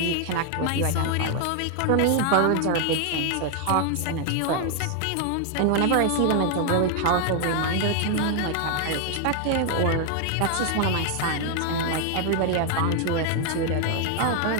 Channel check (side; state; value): both; different; correlation 0.00